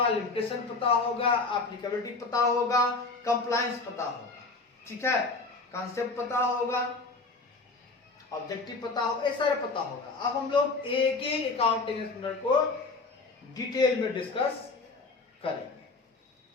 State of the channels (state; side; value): quieter; right; 3.8 dB